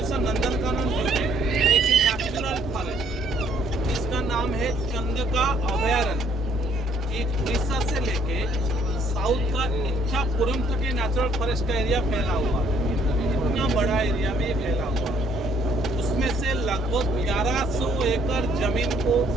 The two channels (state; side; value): normal; both; correlation 0.64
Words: सर नंदनकानन जू है एक नेशनल फॉरेस्ट, इसका नाम है चंद्रका अभयारण्य। एक उड़ीसा से लेके साउथ का इच्छापुरम तक ये नेचुरल फॉरेस्ट का एरिया फैला हुआ है। इतना बड़ा एरिया में ये फैला हुआ है। उसमें से लगभग 1100 एकड़ जमीन को